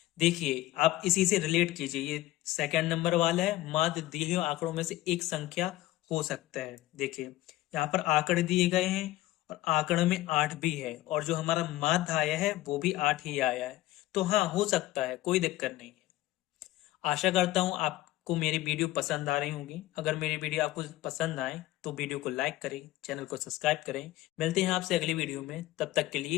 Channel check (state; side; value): quieter; right; 16.3 dB